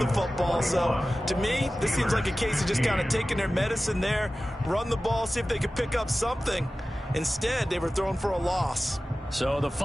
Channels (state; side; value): normal; both; correlation 0.96